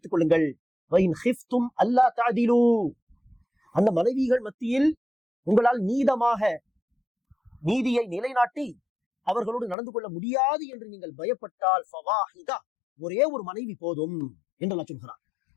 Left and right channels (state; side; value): drops out; right; at 9.8 s